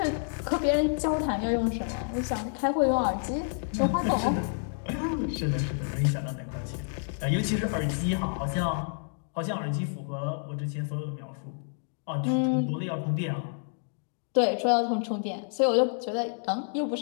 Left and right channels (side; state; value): right; silent; digital silence